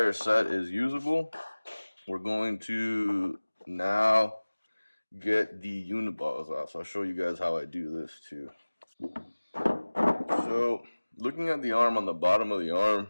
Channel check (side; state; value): both; inverted; correlation -1.00